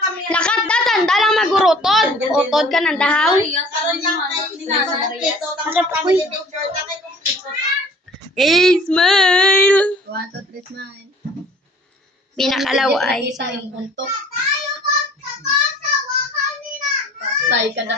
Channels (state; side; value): normal; both; correlation 0.51